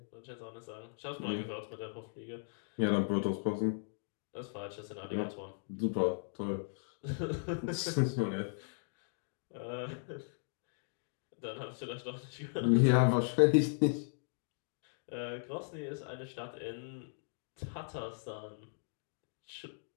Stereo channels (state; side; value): silent; right; digital silence